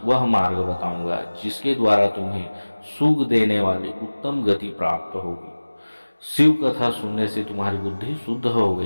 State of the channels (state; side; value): inverted; both; correlation -1.00